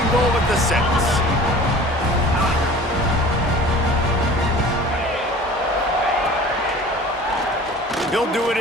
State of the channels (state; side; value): normal; both; correlation 0.43